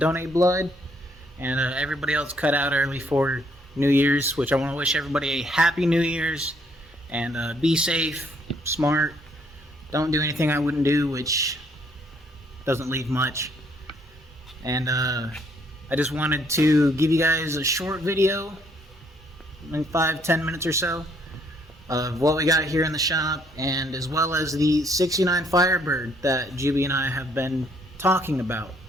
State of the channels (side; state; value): both; normal; correlation 0.67